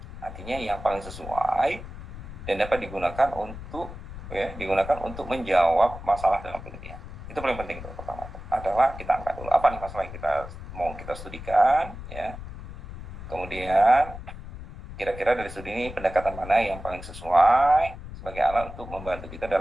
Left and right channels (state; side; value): noise; left; rumble, 12 dB below the sound